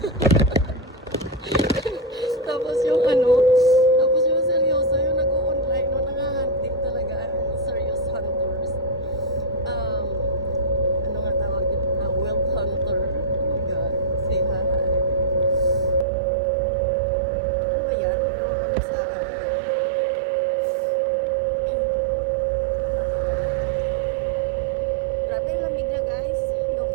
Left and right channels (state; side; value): drops out; left; at 16.1 s